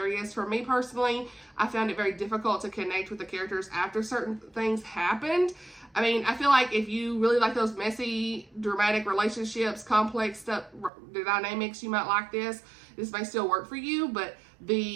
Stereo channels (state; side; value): drops out; left; at 10.9 s